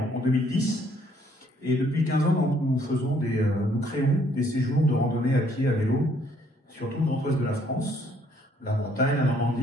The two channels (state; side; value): normal; both; correlation 0.65